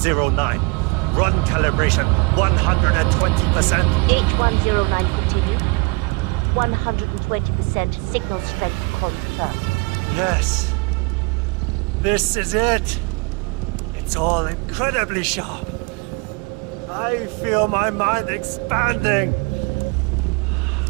Run calibration 120%. H109 continue. 120% signal strength confirmed. Yes. This is it. It's all incredibly sharp. I feel my mind expanding.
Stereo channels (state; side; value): quieter; left; 29.2 dB